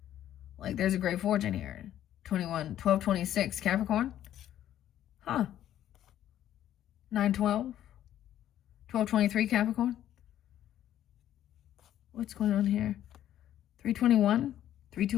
Like, there's a great fortune here. 12, 26, Capricorn. 9, 12. 12, 23, Capricorn. What's going on here? 321,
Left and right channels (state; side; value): quieter; right; 11.7 dB